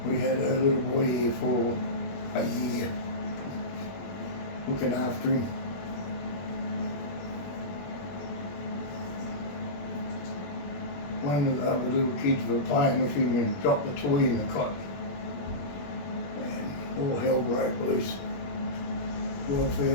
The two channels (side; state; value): right; late; 21 ms